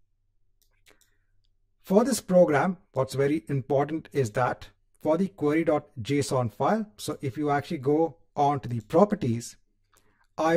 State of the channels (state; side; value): identical; both; correlation 1.00